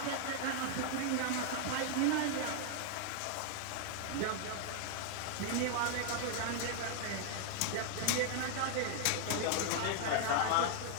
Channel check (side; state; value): both; different; correlation 0.00